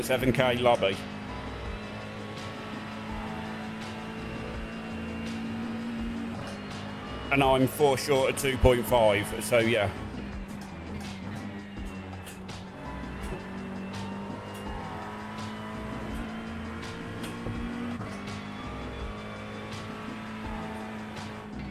lobby. And I'm 4 short of 2.5, so yeah.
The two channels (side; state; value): both; identical; correlation 1.00